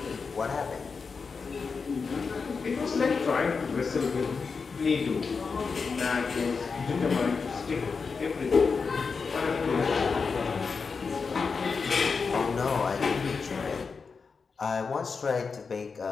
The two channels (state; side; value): quieter; right; 5.0 dB